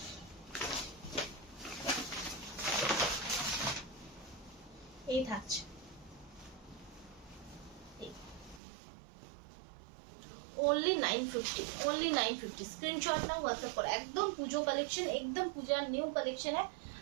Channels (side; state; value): left; drops out; at 8.6 s